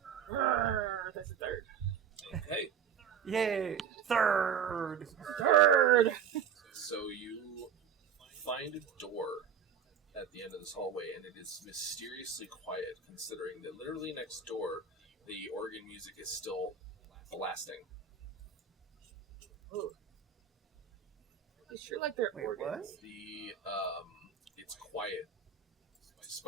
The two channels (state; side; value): quieter; left; 7.6 dB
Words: That's a third. Okay. Yay! Third! So you find a door at the end of this hallway, and it is mysteriously quiet, considering that literally next door, the organ music is still blasting. Ooh. It's sure like they're Wait, organs. It's quiet,